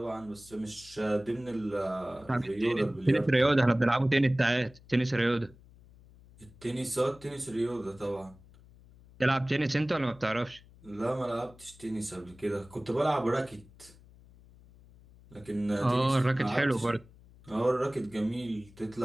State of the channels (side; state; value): left; noise; hum, 24 dB below the sound